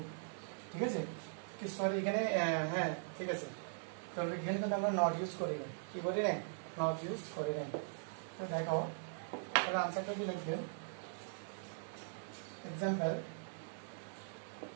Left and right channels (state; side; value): silent; left; digital silence